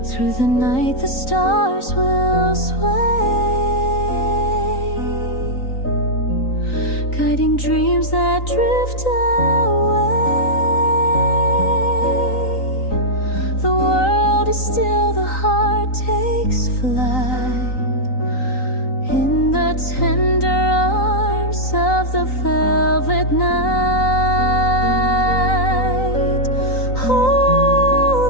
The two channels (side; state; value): right; late; 3.9 ms